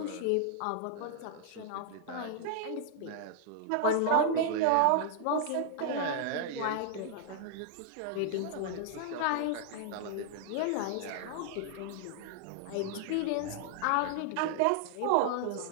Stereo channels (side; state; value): both; different; correlation -0.01